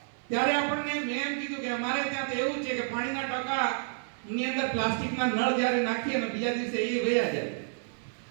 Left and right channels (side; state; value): left; silent; digital silence